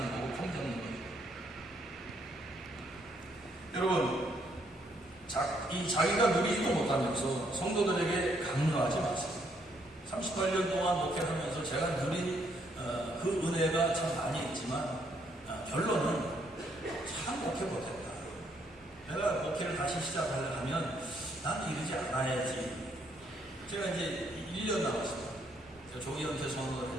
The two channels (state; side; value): normal; both; correlation 0.71